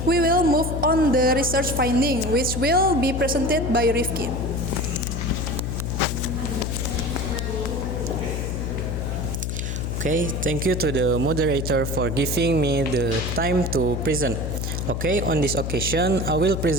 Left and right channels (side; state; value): left; noise; hum, 2 dB below the sound